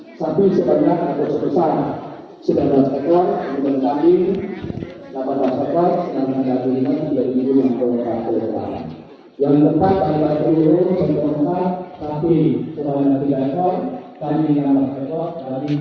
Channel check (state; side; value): identical; both; correlation 1.00